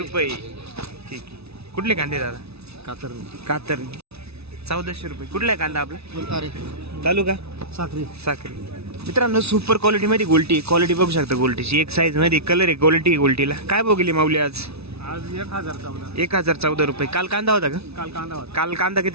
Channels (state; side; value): late; left; 0.79 ms